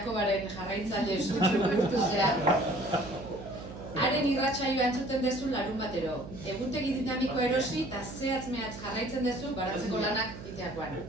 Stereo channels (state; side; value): noise; right; hum, 12 dB below the sound